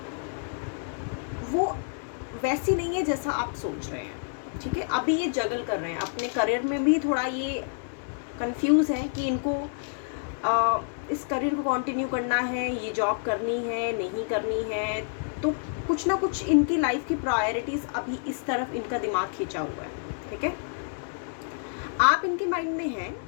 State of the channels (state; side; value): silent; right; digital silence